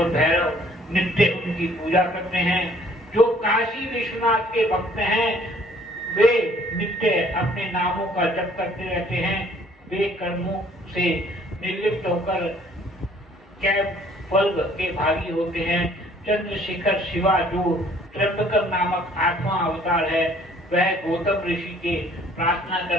भैरव नित्य उनकी पूजा करते हैं। जो काशी विश्वनाथ के भक्त हैं वे नित्य अपने नामों का जप करते रहते हैं। वे कर्मों से निर्लिप्त होकर कैवल्य के भागी होते हैं। चंद्रशेखर शिवा जो त्र्यंबकर नामक 8वां अवतार है, वह गौतम ऋषि के प्रार्थना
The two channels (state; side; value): normal; both; correlation 0.58